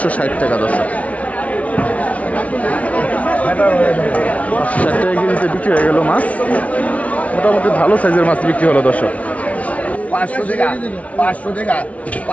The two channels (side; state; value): right; late; 0.066 ms